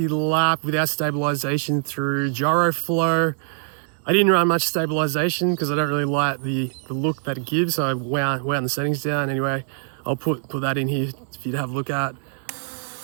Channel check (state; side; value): silent; left; digital silence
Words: lap without stabilization through Gyroflow. I didn't run much stabilization because I don't really like the look that it gives, so I wound the settings down. Anyway, I'll put that in here for you to have a look at.